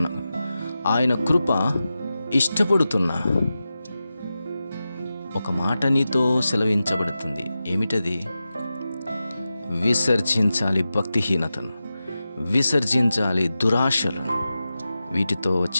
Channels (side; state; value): both; inverted; correlation -0.93